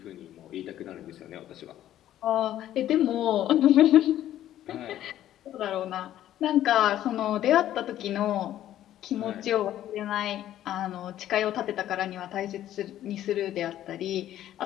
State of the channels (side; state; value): right; quieter; 12.4 dB